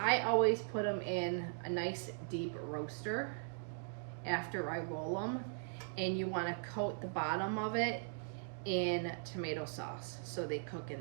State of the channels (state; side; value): silent; left; digital silence